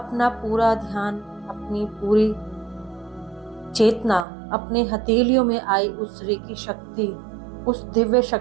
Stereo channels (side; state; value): left; drops out; at 4.2 s